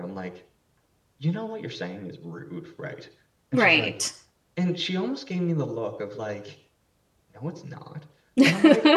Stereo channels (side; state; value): both; identical; correlation 1.00